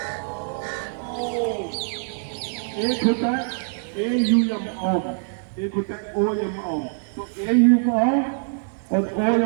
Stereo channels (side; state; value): left; silent; digital silence